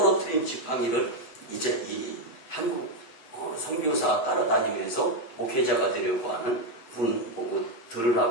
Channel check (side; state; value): right; late; 8.0 ms